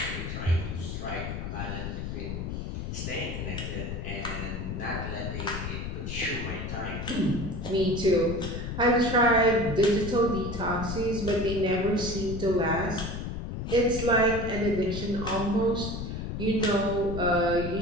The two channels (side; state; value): left; noise; rumble, 5 dB below the sound